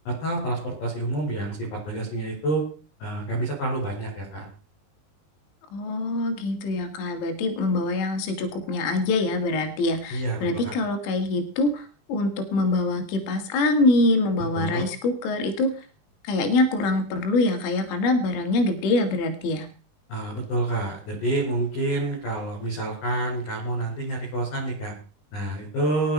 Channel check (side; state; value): right; late; 20 ms